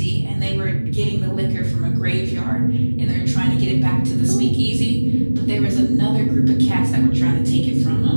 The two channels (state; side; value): inverted; both; correlation -1.00